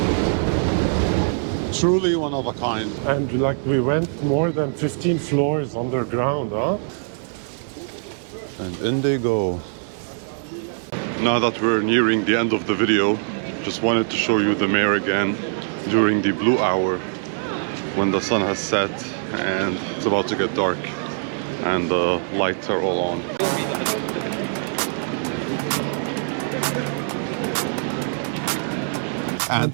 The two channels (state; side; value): silent; left; digital silence